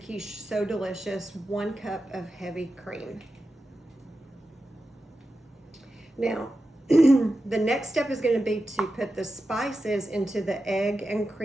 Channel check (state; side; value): normal; both; correlation 0.91